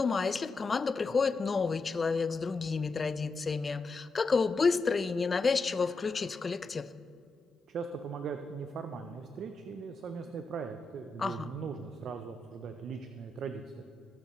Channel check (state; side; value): quieter; right; 3.5 dB